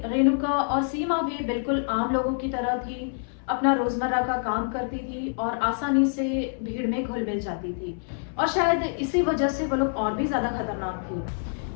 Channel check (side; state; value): right; silent; 61 dB below the other